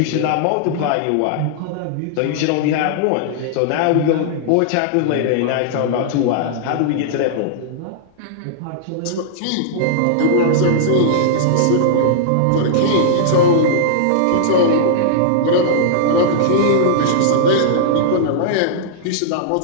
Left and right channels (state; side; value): different; both; correlation -0.02